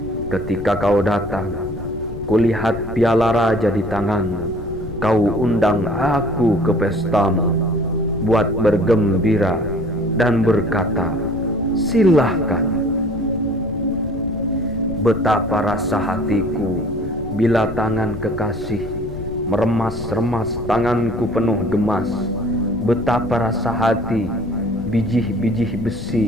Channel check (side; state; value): left; noise; rumble, 11 dB below the sound